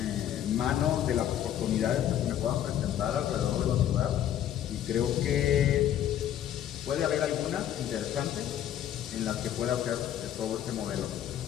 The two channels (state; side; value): quieter; right; 10.9 dB